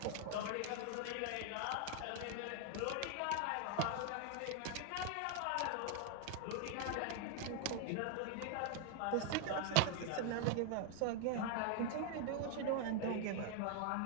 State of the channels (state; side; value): different; both; correlation 0.00